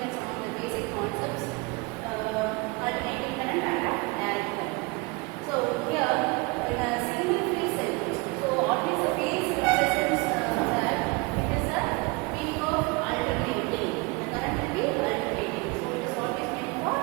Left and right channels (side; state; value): left; quieter; 26.9 dB